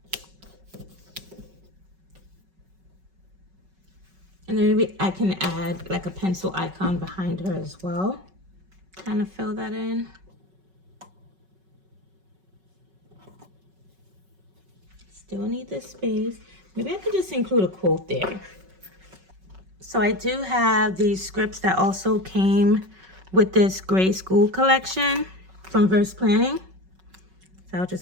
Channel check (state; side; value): late; left; 5.3 ms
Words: And then maybe I can add like a pencil icon behind her as well. Kind of fill that in. Still need this space. Maybe I could just include a quote there. So I do have these scripts that also came with this grade school collection from Verse Planning. So I'll